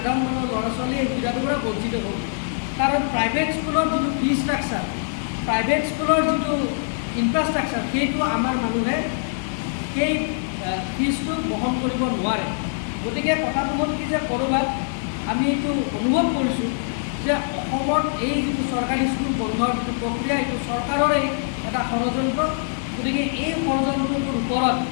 মানুহৰ ল'ৰা ছোৱালী এই সুবিধাটোৰ পৰা বঞ্চিত হ'ল। কাৰণ প্ৰাইভেট স্কুলৰ যিটো ফিজ ষ্ট্ৰাকচাৰ, প্ৰাইভেট স্কুলৰ যিটো ইনফ্ৰাষ্ট্ৰাকচাৰ, সেইটো আমাৰ মানুহে সেই ফিজটো বহন কৰিব নোৱাৰে। গতিকে কথাটো হ'ল কি যে ক'ৰবাত আমি এইটো অনুভৱ কৰিছোঁ যে অসমত এই যিটো চৰকাৰী স্কুল বন্ধৰ যিটো প্ৰক্ৰিয়া, এইটো চৰকাৰৰে এটা ষড়যন্ত্ৰ। গতিকে এই ষড়যন্ত্ৰটোৰ ওপৰত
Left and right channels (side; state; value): right; silent; digital silence